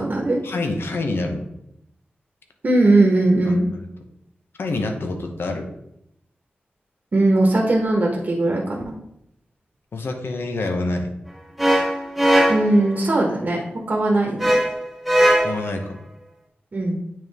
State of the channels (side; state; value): both; normal; correlation 0.92